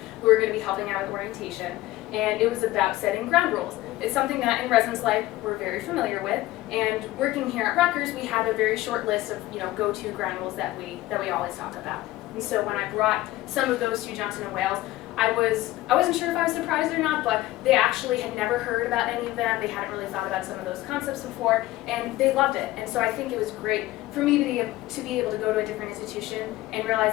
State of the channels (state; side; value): quieter; right; 16.9 dB